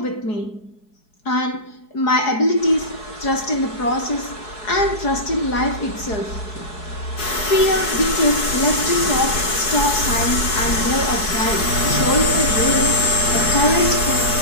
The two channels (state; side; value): late; right; 4.7 ms